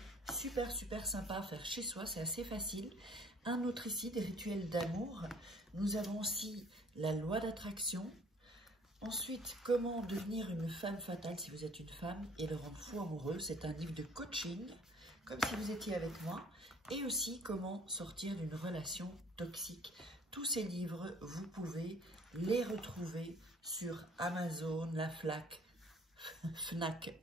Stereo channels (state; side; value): normal; both; correlation 0.54